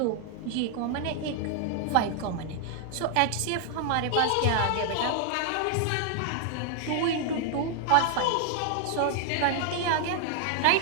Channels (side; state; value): both; different; correlation 0.00